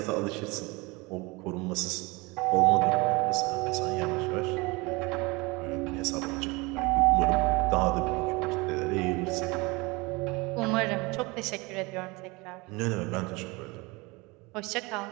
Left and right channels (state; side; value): quieter; left; 25.2 dB